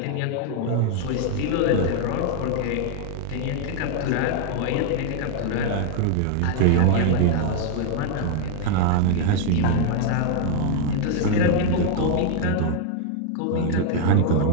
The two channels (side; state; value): both; different; correlation 0.01